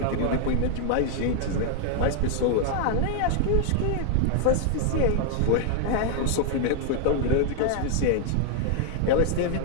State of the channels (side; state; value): both; different; correlation 0.00